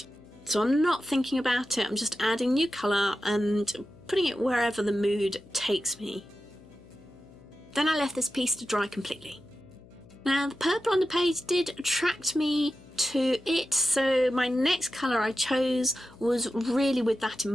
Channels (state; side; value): noise; left; hum, 23 dB below the sound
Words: so I'm not thinking about it. I'm just adding new colour and putting it wherever the mood takes me. Then I left this piece to dry completely. Now the purple on the page did attract me to it, so my next colour I chose was really with that in